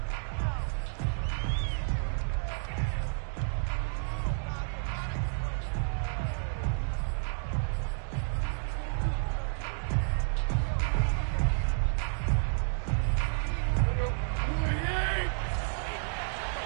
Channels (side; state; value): left; silent; digital silence